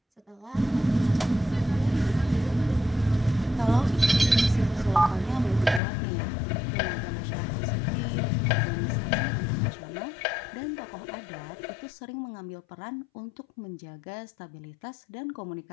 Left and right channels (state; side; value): drops out; right; at 5.8 s